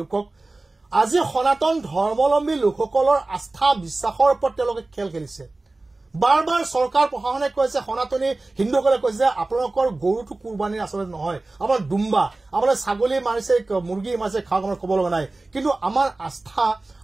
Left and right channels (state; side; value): quieter; left; 3.1 dB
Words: কওক আজি সনাতন ধৰ্মাৱলম্বী লোকসকলৰ আস্থা বিশ্বাসৰ ওপৰত তেওঁলোকে খেল খেলিছে বাৰ বাৰ চৰকাৰ প্ৰশাসনে কৈছে সনাতনী হিন্দুসকলে কৈছে যে আপোনালোকৰ গৰুটো কুৰবানীৰ আচলতে নহয় আমাৰ দুম্বা আপোনাৰ ছাগলী মাৰিছে মুৰ্গী মাৰিছে খাওক আমাৰ ক'ব লগা নাই কিন্তু আমাৰ আস্থা